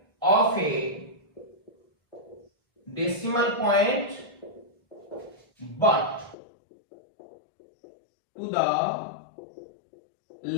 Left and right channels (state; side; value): drops out; right; at 6.4 s